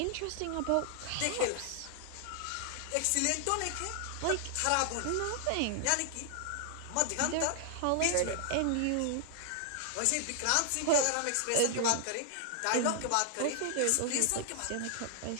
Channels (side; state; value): both; different; correlation -0.01